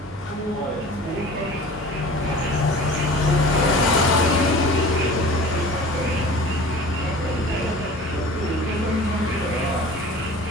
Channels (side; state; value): both; normal; correlation 0.41